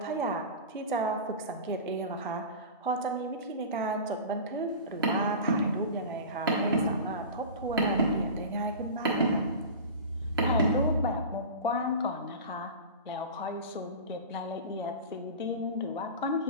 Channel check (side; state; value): both; inverted; correlation -0.31